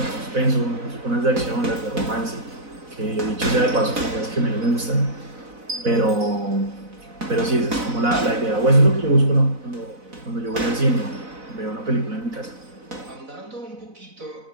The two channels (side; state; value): left; late; 4.0 ms